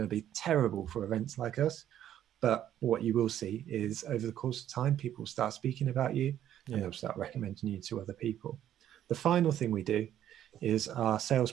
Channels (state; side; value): quieter; left; 11.2 dB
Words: to be terrible for events like us. But what you will see is over the course of time, people will start speaking about you, and they'll start recommending you to other people. The final thing we do is our sales